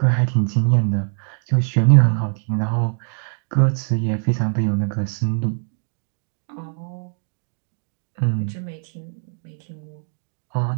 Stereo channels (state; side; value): silent; left; 64 dB below the other